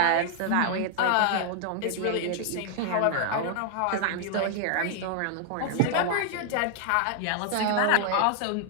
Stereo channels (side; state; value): both; different; correlation 0.00